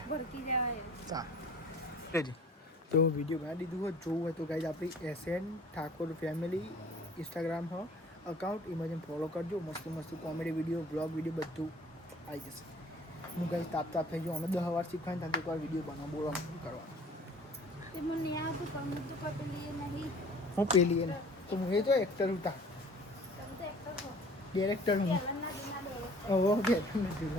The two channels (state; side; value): normal; both; correlation 0.49